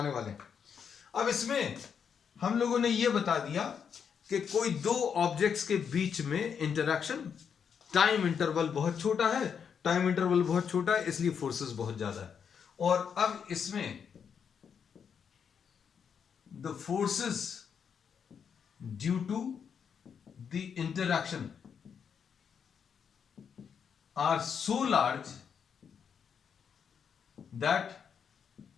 वाले हैं। अब इसमें हम लोगों ने यह बता दिया कि कोई दो ऑब्जेक्ट्स के बीच में इंटरैक्शन, टाइम इंटरवल बहुत छोटा है, टाइम इंटरवल बहुत छोटा है, इसलिए फोर्सेस बहुत ज्यादा है। और अब इसमें the forces due to the interaction are so large that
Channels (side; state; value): right; quieter; 7.1 dB